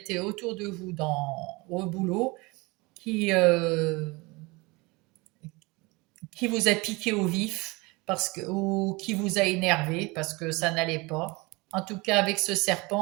autour de vous au boulot, qui, euh, qui vous a piqué au vif ou qui vous a énervé parce que ça n'allait pas. En tout cas, avec ce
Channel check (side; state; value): left; quieter; 24.9 dB